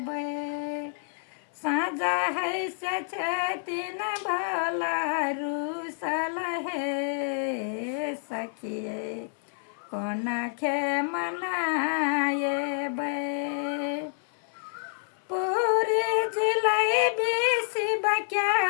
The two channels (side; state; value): right; silent; 58 dB below the other